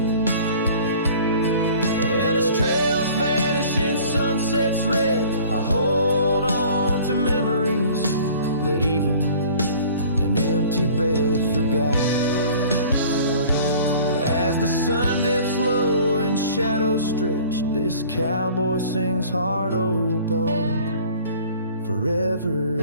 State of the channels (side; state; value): both; inverted; correlation -0.48